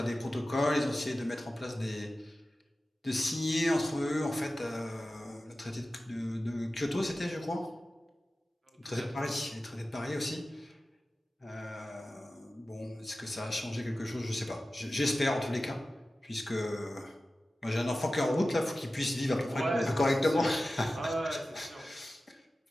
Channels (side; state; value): both; normal; correlation 0.95